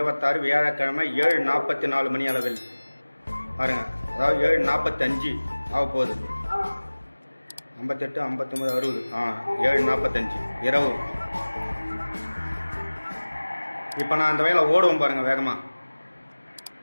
வியாழக்கிழமை 7:44 மணி அளவில் பாருங்கள். அதாவது 7:45 ஆக போகுது. 58, 59, 60. 7:45 இரவு. இப்போ நான் அந்த வயலை ஓடுவோம் பாருங்கள் வேகமாக.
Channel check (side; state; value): both; inverted; correlation -1.00